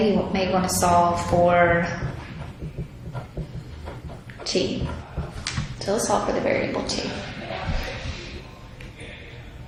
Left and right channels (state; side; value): identical; both; correlation 1.00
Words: you may want to solve for T. So let's solve for the variable T.